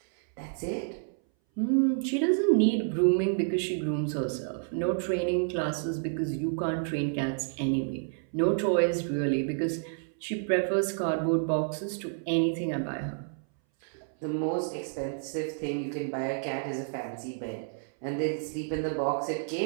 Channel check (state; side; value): silent; left; 58 dB below the other